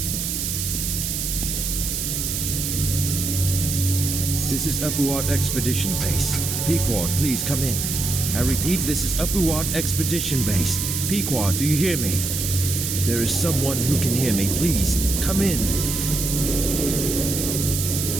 This is Upperwatt Expedition Base. Pequod, please come in. I repeat, this is Upperwatt Expedition Base. Pequod, do you hear me? If there is someone who can hear me, please, come in.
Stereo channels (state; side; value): noise; right; hiss, 2 dB below the sound